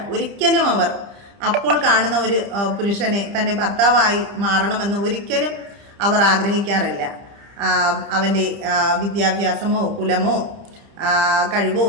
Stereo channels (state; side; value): late; left; 30 ms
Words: ഒരിക്കലും അവർ അപ്പോൾ കാണുന്ന ഒരു പുരുഷനെ തൻ്റെ ഭർത്താവായി മാറണമെന്ന് ഒരിക്കലും അവർ ആഗ്രഹിക്കാറില്ല. അവൻ്റെ വിദ്യാഭ്യാസമോ കുലമോ കഴിവോ